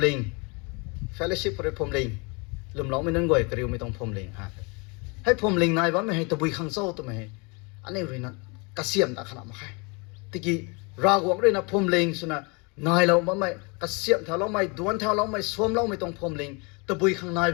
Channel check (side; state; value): right; quieter; 30.5 dB